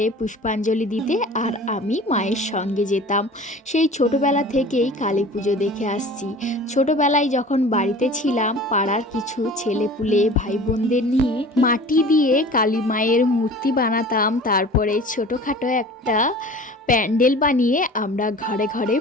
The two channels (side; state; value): both; normal; correlation 0.42